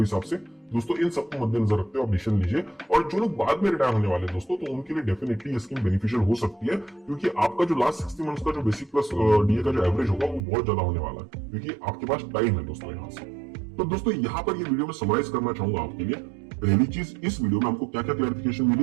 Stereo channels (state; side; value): drops out; left; at 10.4 s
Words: से। दोस्तों इन सबको मद्देनजर रखते हुए आप डिसीजन लीजिए। और जो लोग बाद में रिटायर होने वाले दोस्तों, तो उनके लिए डेफिनेटली ये स्कीम बेनिफिशियल हो सकती है, क्योंकि आपका जो लास्ट 60 मंथ्स का जो बेसिक प्लस डीए का जो एवरेज होगा वो बहुत ज्यादा होने वाला है, क्योंकि आपके पास टाइम है दोस्तों यहाँ से। तो दोस्तों यहाँ पर ये वीडियो में समराइज करना चाहूंगा आपके लिए। पहली चीज, इस वीडियो में हमको क्या क्या क्लैरिफिकेशन